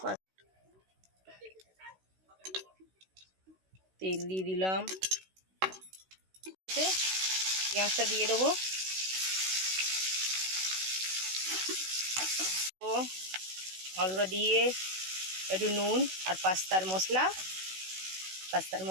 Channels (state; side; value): late; left; 16 ms